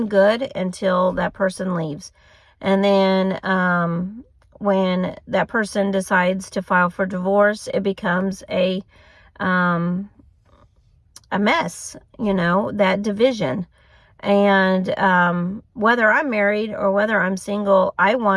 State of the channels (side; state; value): both; identical; correlation 1.00